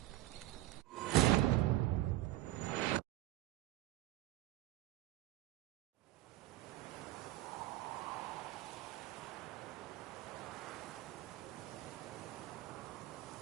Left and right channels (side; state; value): left; quieter; 16.3 dB